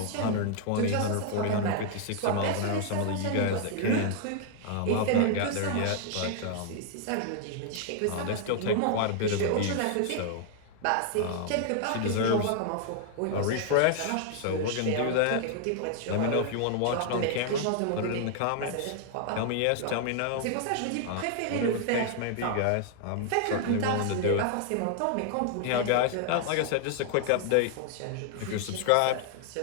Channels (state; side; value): different; both; correlation 0.00